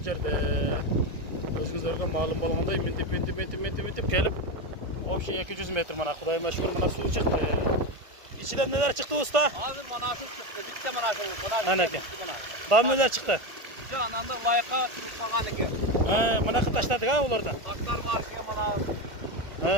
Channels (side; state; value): left; late; 1.5 ms